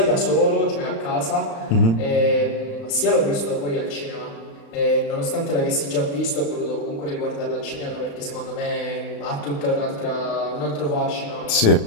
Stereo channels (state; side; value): late; right; 35 ms